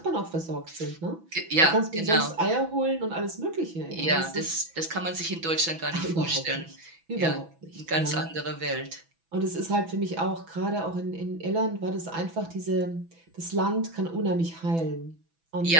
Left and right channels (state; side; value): late; left; 6.0 ms